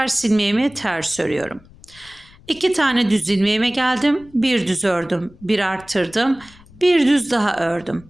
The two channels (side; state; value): left; noise; rumble, 25 dB below the sound